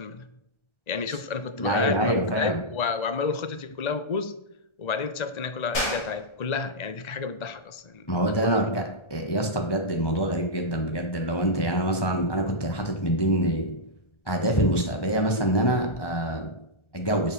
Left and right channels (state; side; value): late; right; 1.3 ms